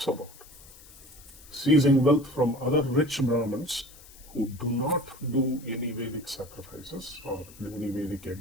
about seizing wealth from other rich Brahmins who do not do any Vedic sacrifices or any Vedic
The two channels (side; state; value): left; noise; hiss, 21 dB below the sound